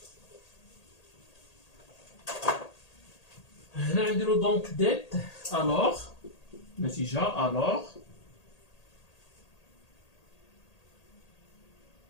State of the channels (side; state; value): right; late; 1.8 ms